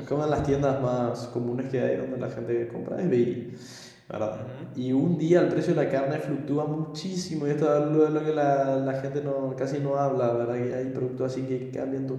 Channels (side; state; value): both; identical; correlation 1.00